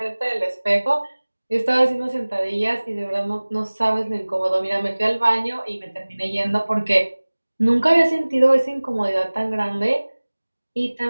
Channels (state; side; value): inverted; both; correlation -1.00